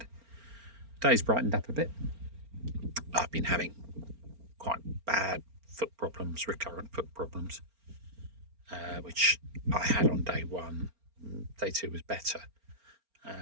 The day's brightened up a bit. I've been having quite bad foot problems, recurrent foot problems, which I had on day one. Day two was better,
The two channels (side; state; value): left; late; 4.4 ms